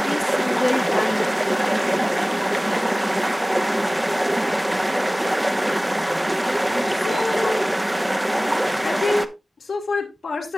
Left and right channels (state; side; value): normal; both; correlation 0.98